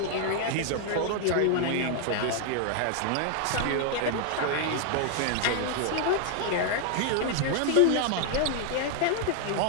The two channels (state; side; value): different; both; correlation 0.00